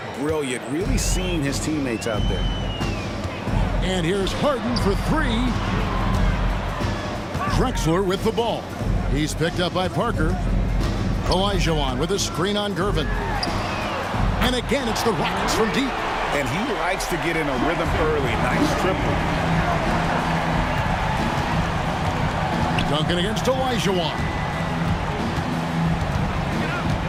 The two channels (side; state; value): both; identical; correlation 1.00